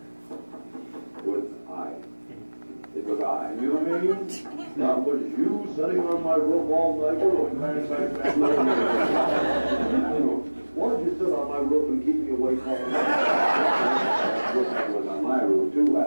It was I. It was I. You know what I mean? That was you sitting on my roof all night. Why did you sit on my roof and keep me awake all night? Woodpecker was on my roof too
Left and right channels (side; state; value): both; inverted; correlation -1.00